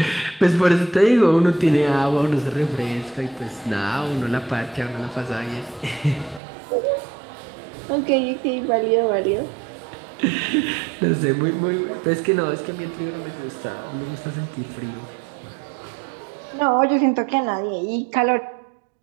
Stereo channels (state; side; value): drops out; left; at 6.4 s